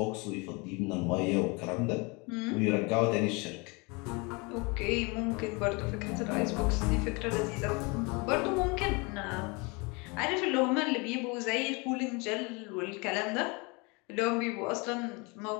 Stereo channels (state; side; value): quieter; right; 28.5 dB